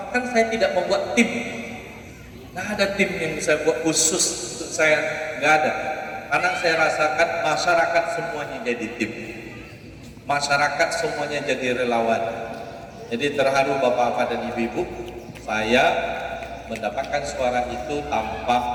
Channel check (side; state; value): both; identical; correlation 1.00